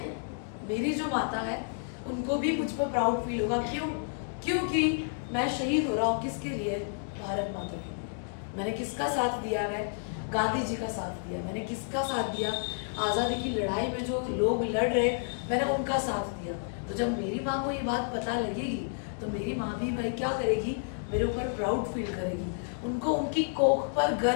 मेरी जो माता है उनको भी मुझ पर प्राउड फील होगा। क्यों? क्योंकि मैं शहीद हो रहा हूँ किसके लिए, भारत माता के लिए। मैंने किसका साथ दिया है, गांधी जी का साथ दिया। मैंने किसका साथ दिया, आजादी की लड़ाई में जो लोग लड़ रहे मैंने उनका साथ दिया। तो जब मेरी माँ को ये बात पता लगेगी तो मेरी माँ भी भाई क्या करेगी, मेरे ऊपर प्राउड फील करेगी, उनको उनकी कोख पर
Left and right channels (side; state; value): right; silent; digital silence